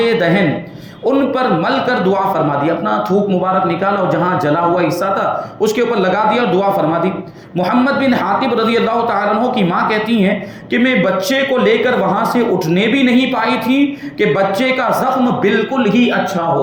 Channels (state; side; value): identical; both; correlation 1.00